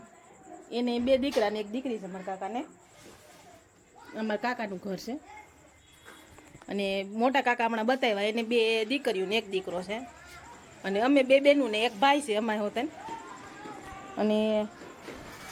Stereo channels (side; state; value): both; identical; correlation 1.00